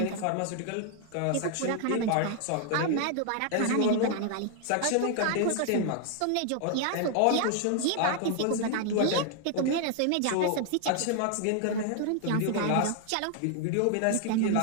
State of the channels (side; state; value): both; different; correlation 0.00